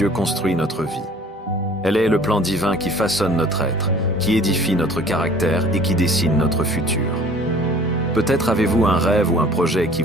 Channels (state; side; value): normal; both; correlation 0.51